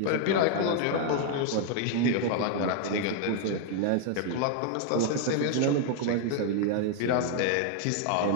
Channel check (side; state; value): both; different; correlation 0.00